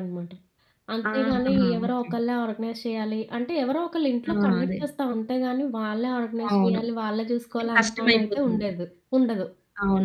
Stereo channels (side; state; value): both; identical; correlation 1.00